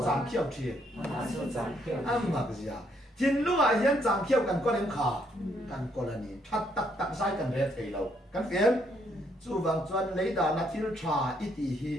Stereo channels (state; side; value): normal; both; correlation 0.71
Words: giảm khiêu chi, à mà cái gì à, chim lúc à hiện giảm khiêu cần có em khá, cần có là gì, thắt tắc sai cần rét thấy lâu, cần phiền, chú vàng chuan lấy đà nát thiếu trà ít đi